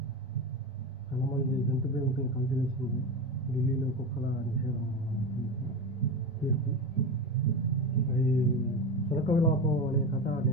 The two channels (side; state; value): both; normal; correlation 0.21